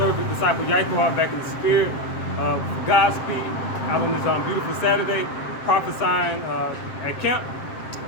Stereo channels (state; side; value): late; right; 7.6 ms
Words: disciple Yaitwa, back in the spirit of Godspeed, out on this beautiful Saturday, prophesying at camp.